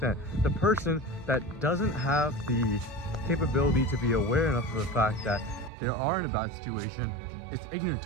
the person that doesn't have the capability to be aware enough of the fact that they are in a bad situation, it's ignorant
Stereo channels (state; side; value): drops out; left; at 5.7 s